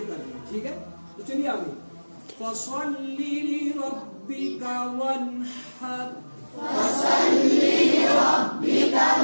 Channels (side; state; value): both; inverted; correlation -1.00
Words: کر دیں. ٹھیک ہے تو چلیے آگے. فصلی لربک وانحر